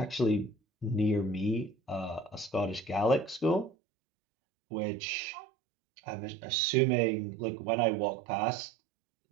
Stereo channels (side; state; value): left; drops out; at 3.7 s